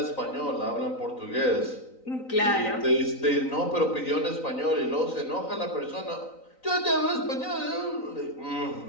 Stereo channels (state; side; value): late; right; 3.9 ms